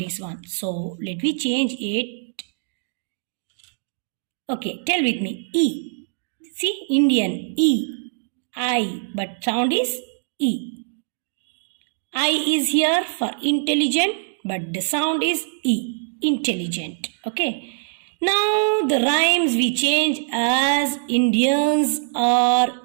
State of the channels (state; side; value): silent; left; digital silence